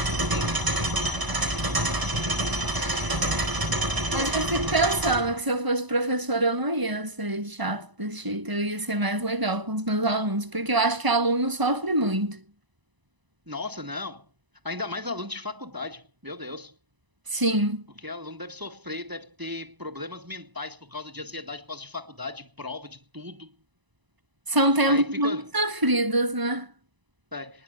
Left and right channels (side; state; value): left; late; 1.0 ms